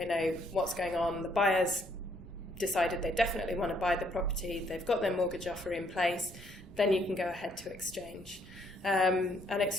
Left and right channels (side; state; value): both; normal; correlation 0.69